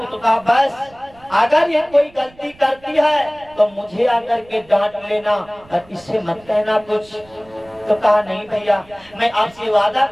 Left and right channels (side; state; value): right; noise; rumble, 27 dB below the sound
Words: तो कहा बस अगर ये कोई गलती करती है तो मुझे आकर के डांट लेना और इससे मत कहना कुछ। तो कहा नहीं भैया, मैं आपसे वादा